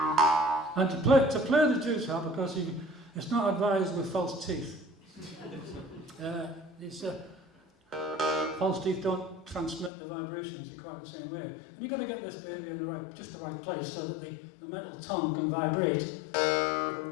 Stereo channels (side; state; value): right; drops out; at 9.9 s